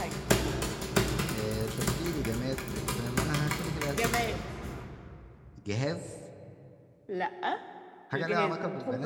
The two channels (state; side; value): identical; both; correlation 1.00